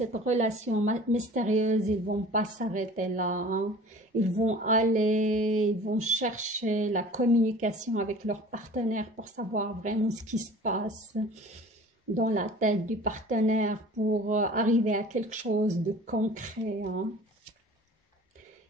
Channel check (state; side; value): normal; both; correlation 0.44